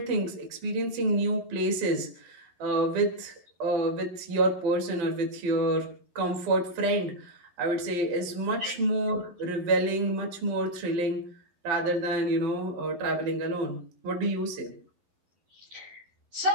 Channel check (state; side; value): late; left; 12 ms